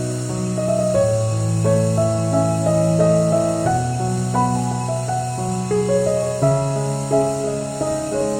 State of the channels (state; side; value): identical; both; correlation 1.00